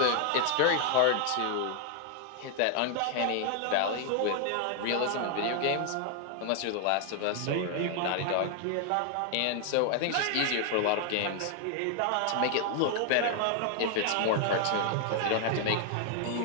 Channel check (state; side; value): different; both; correlation 0.00